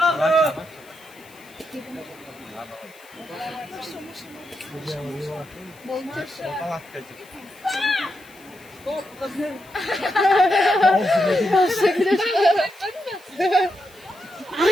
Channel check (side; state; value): left; noise; hiss, 25 dB below the sound